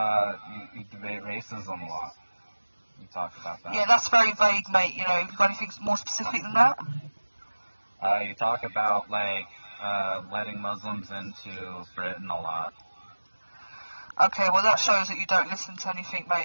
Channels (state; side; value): inverted; both; correlation -1.00